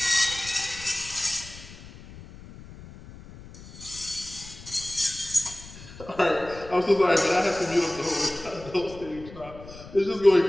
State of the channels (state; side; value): noise; left; rumble, 17 dB below the sound